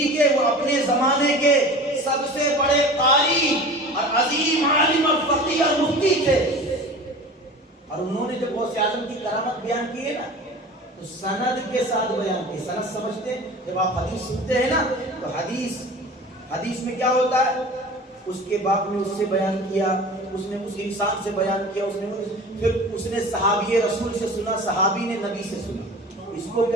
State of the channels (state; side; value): normal; both; correlation 0.38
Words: کے وہ اپنے زمانے کے سب سے بڑے قاری اور عظیم عالم اور فقیہ اور مفتی تھے۔ اور انہوں نے جب غوث اعظم کی کرامت بیان کی ہے نا، تو سند کے ساتھ بیان کی۔ سند سمجھتے ہیں؟ جب آپ حدیث سنتے ہیں نا، تو حدیث میں کیا ہوتا ہے؟ اس کے باپ نے اس سے بیان کیا، اس نے اس انسان سے بیان کیا، پھر اس نے صحابی رسول سے سنا، صحابی نے نبی سے سنا، اس کو